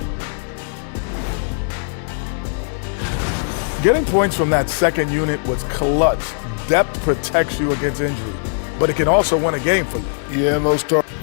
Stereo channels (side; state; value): right; silent; 62 dB below the other